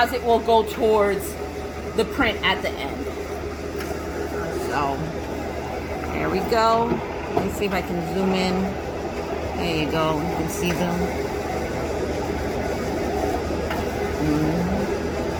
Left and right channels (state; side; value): identical; both; correlation 1.00